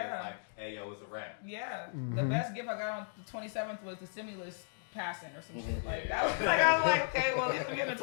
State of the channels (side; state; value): right; silent; digital silence